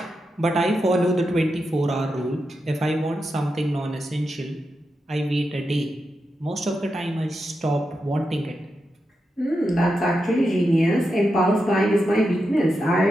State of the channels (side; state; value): both; normal; correlation 0.88